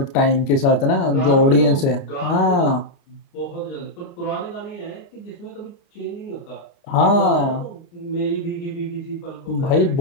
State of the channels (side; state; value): right; late; 29 ms